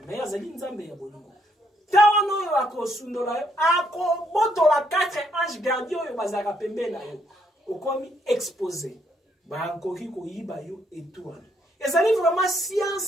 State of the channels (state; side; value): normal; both; correlation 0.72